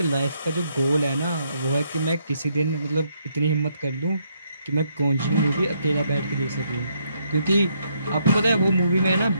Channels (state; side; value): inverted; both; correlation -0.74